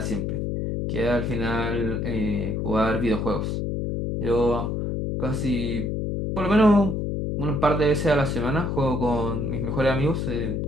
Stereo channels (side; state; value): left; noise; hum, 1 dB below the sound